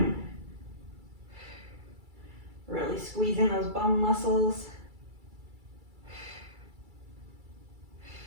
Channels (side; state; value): left; late; 2.3 ms